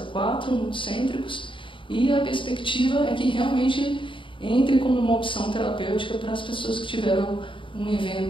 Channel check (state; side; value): late; right; 0.25 ms